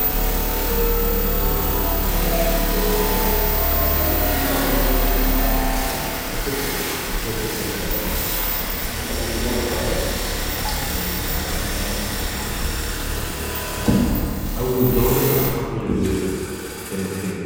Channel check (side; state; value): both; identical; correlation 1.00